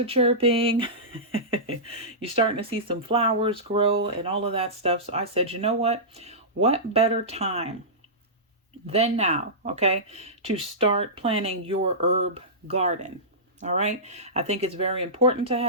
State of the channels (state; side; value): normal; both; correlation -0.17